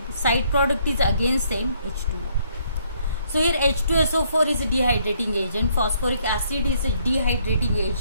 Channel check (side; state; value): both; inverted; correlation -0.68